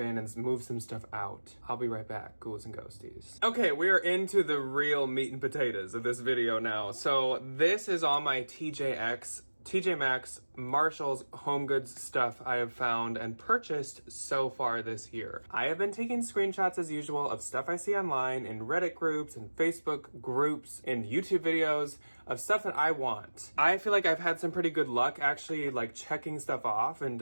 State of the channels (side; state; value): both; inverted; correlation -1.00